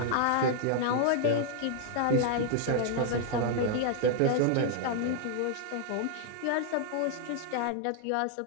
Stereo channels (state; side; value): different; both; correlation 0.00